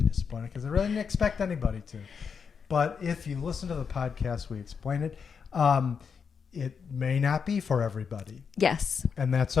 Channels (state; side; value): quieter; right; 6.3 dB